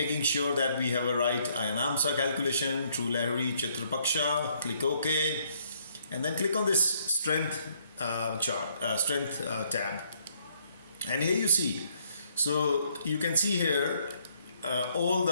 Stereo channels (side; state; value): both; inverted; correlation -0.68